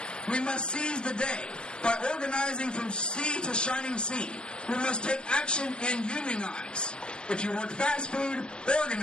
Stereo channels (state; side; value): late; right; 0.053 ms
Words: We must seize the day by organizing from sea to shining sea. We must take action and unionize. If you work fast food,